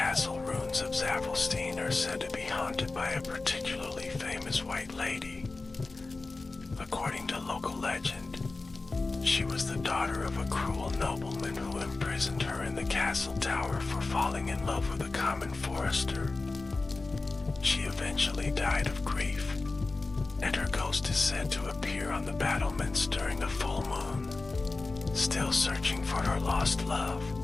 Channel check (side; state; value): right; quieter; 3.5 dB